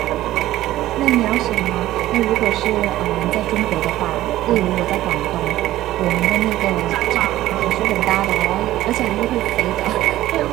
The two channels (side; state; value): left; quieter; 14.9 dB